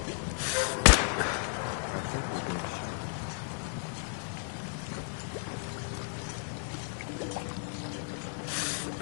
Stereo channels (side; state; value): right; silent; 56 dB below the other